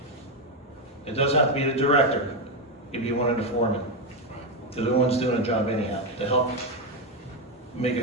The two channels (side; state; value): both; normal; correlation 0.07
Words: It doesn't have to be the director. It could be one of the foremen. They're the ones doing the job anyhow, to help make